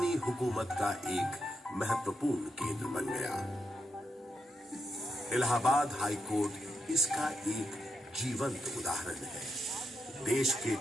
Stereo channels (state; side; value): normal; both; correlation 0.83